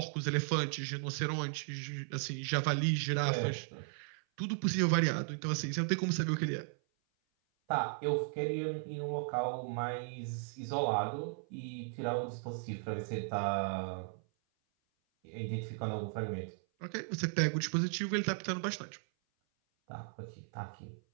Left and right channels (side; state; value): left; silent; 54 dB below the other